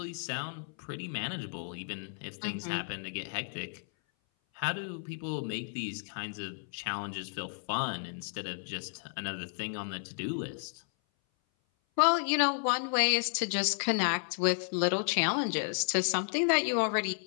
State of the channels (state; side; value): silent; right; 56 dB below the other